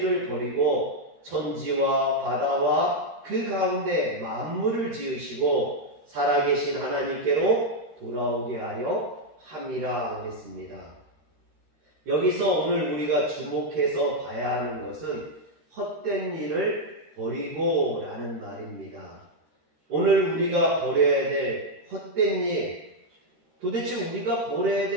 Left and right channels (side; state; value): left; late; 13 ms